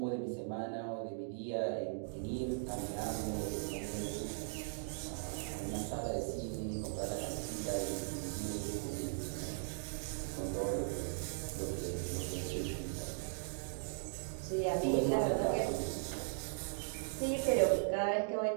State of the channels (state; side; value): silent; left; digital silence